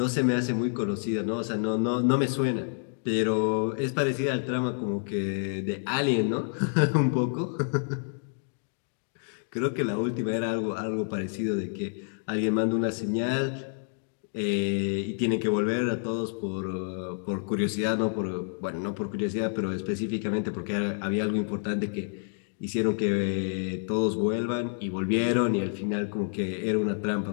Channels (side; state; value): right; silent; 58 dB below the other